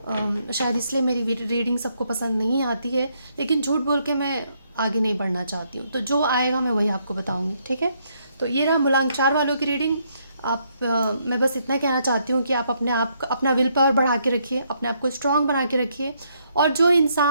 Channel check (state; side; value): inverted; both; correlation -0.73